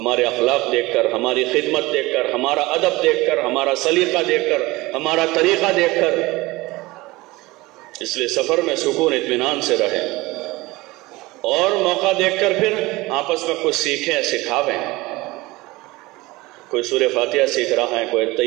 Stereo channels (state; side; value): quieter; left; 20.9 dB